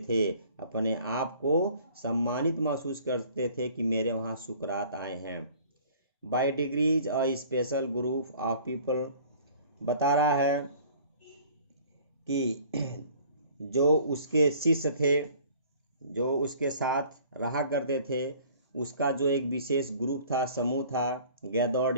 थे, अपने आप को सम्मानित महसूस करते थे कि मेरे वहाँ सुकरात आए हैं। By degrees a special group of people, बता रहा है कि जो उसके शिष्य थे, जो उसके साथ रहा करते थे, उसका जो एक विशेष ग्रुप था, समूह था, गैदर्ड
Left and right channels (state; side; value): inverted; both; correlation -0.52